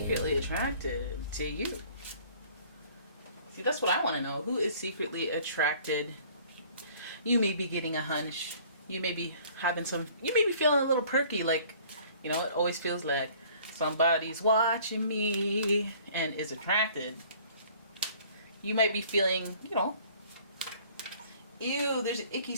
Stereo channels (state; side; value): inverted; both; correlation -0.53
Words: Attracted to You. See, that's what I want to know. Who is secretly attracted? You may be getting a hunch. You may be feeling a little perky, like, it always feels like somebody's watching me and is attracted. You might be feeling, ew, there's an icky